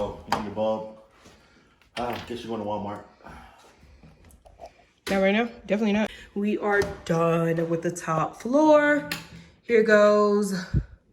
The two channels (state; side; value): identical; both; correlation 1.00